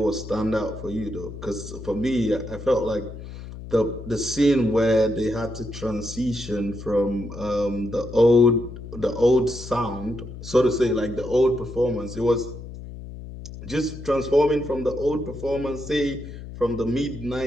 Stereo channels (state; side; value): noise; left; hum, 12 dB below the sound